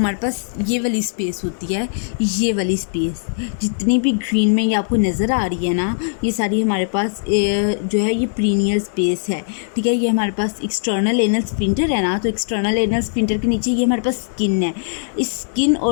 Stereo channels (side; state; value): right; silent; digital silence